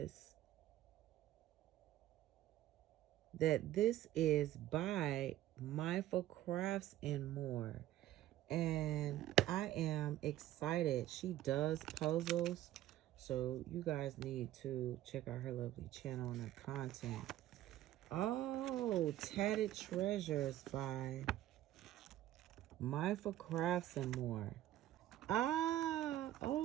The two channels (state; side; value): quieter; left; 13.7 dB